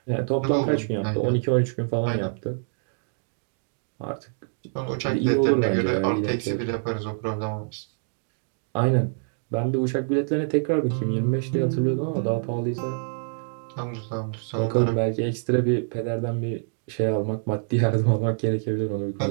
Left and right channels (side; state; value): left; silent; digital silence